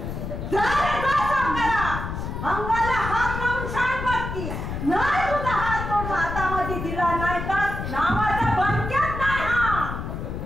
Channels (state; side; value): noise; left; rumble, 6 dB below the sound